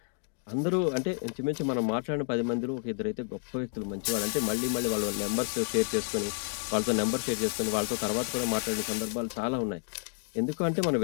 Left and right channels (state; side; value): silent; right; 55 dB below the other